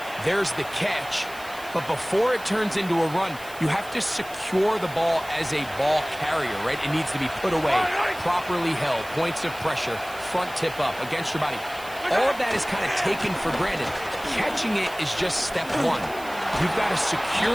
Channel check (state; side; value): noise; right; hiss, 18 dB below the sound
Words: There's the catch, but before it turns into a run, you have to secure the ball as a ball carrier, right? It needs to be put away, properly held, points of pressure, front tip up against your body. All of that is kind of taken for granted. Catching it is just step 1. You've got to